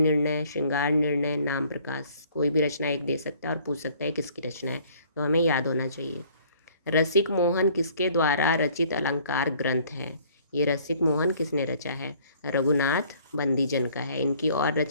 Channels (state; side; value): inverted; both; correlation -0.57